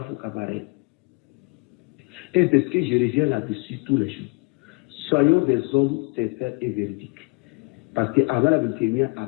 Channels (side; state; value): right; quieter; 29.7 dB